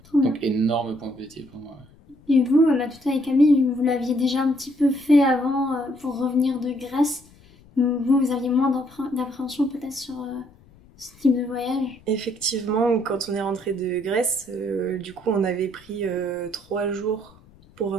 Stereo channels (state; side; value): noise; left; rumble, 27 dB below the sound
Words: donc énorme point positif pour moi. Et vous, Matouta et Camille, vous l'aviez déjà un petit peu fait avant pour revenir de Grèce. Vous aviez moins d'appréhension peut-être sur ce type de voyage? Effectivement, quand on est rentré de Grèce, du coup on avait pris 3 jours pour